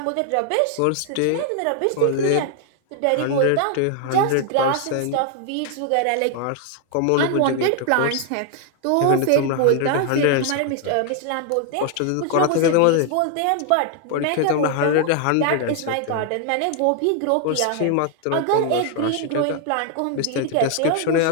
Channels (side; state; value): both; different; correlation 0.00